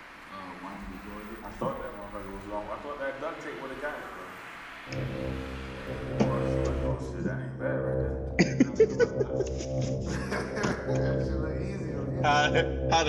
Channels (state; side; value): identical; both; correlation 1.00